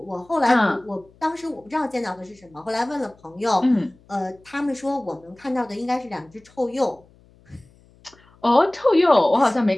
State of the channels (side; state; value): left; noise; hum, 29 dB below the sound